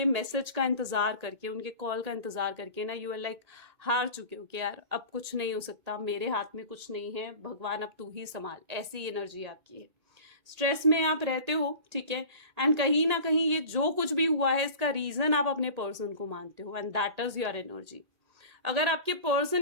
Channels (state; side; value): late; left; 1.8 ms